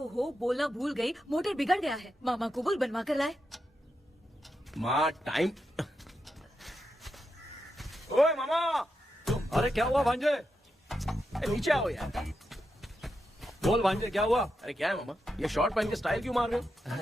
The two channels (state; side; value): normal; both; correlation 0.86